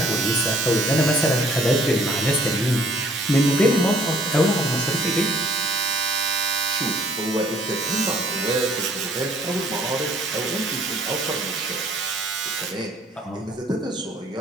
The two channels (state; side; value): normal; both; correlation 0.59